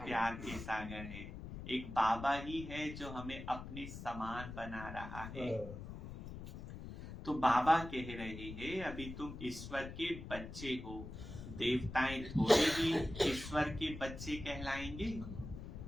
के सागर है। एक बाबा ही है जो हमें अपने समान बना रहा है। तो बाबा कह रहे हैं अभी तुम ईश्वर के बच्चे हो। देवताएं थोड़े ही ईश्वर के बच्चे कहलाएंगे।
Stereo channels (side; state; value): left; noise; rumble, 10 dB below the sound